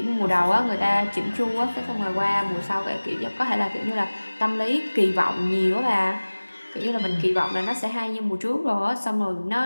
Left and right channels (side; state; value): both; inverted; correlation -1.00